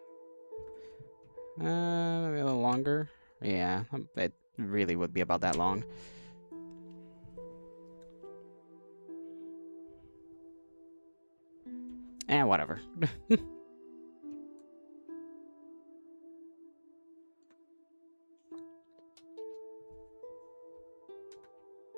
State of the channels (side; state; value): both; inverted; correlation -1.00